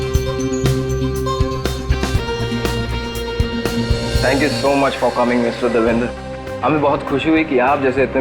Thank you so much for coming mister Devendra. हमें बहुत खुशी हुई कि आप जैसे इतने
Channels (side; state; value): both; identical; correlation 1.00